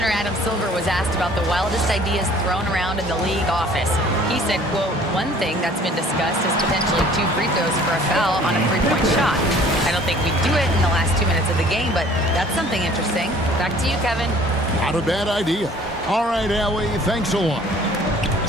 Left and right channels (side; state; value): both; normal; correlation 0.52